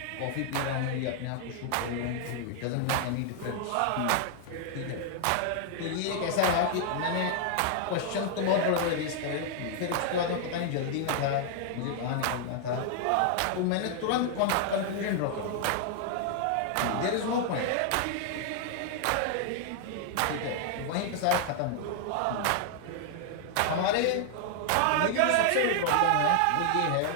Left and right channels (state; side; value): different; both; correlation 0.00